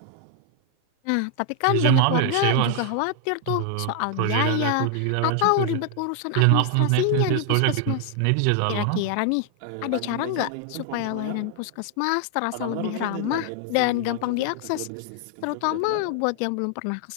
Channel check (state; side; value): different; both; correlation 0.00